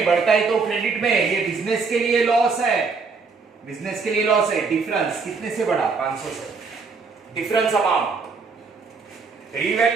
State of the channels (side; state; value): left; quieter; 4.7 dB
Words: बढ़ता है तो क्रेडिट में, ये बिजनेस के लिए लॉस है, डिफरेंस कितने से बढ़ा? 500 से, difference amount.